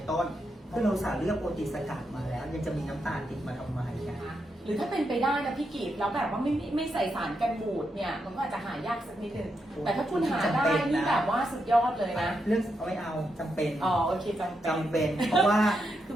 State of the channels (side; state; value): both; normal; correlation 0.83